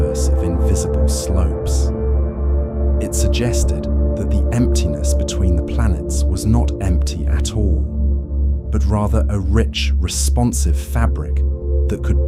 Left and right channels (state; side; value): identical; both; correlation 1.00